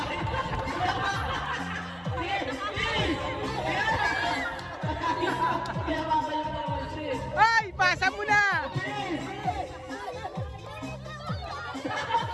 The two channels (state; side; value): identical; both; correlation 1.00